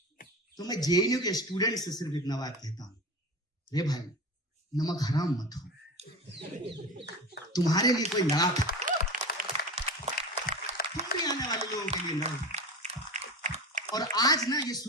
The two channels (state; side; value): normal; both; correlation 0.29